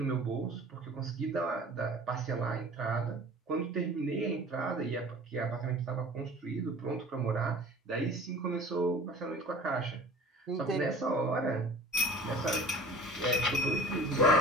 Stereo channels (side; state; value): both; normal; correlation 0.43